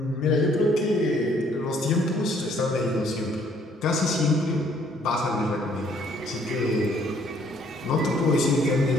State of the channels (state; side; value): normal; both; correlation 0.63